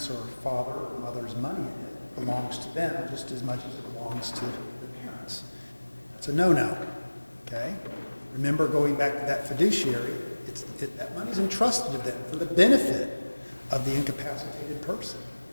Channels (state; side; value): inverted; both; correlation -1.00